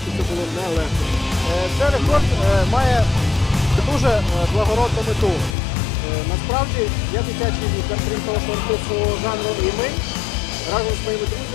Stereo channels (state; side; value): drops out; right; at 5.6 s